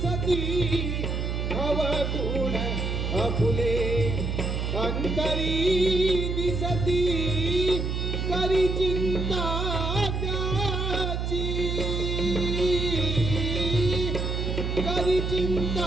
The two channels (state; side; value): noise; right; hum, 1 dB below the sound